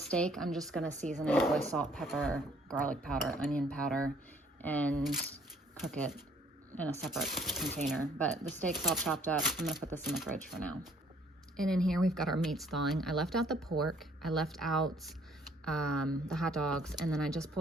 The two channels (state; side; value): normal; both; correlation 0.61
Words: I'm just gonna season it with salt, pepper, garlic powder, onion powder, and cook it in a separate container. But the steak's all chopped up. I'm gonna put this in the fridge for now. And in here we've got our meats thawing. I left out the pork, I left out the hot dogs, and then I just